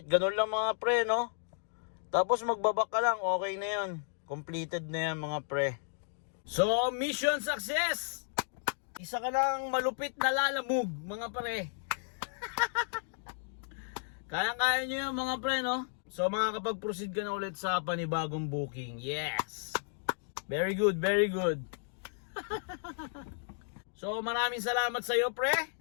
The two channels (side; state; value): right; silent; digital silence